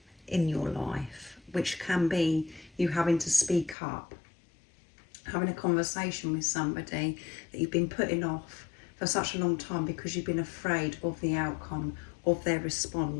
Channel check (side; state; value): right; drops out; at 3.8 s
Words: in your life, which can be you having to speak up, having a conversation with somebody that you've been putting off for such a long time because you've been afraid of the outcome of their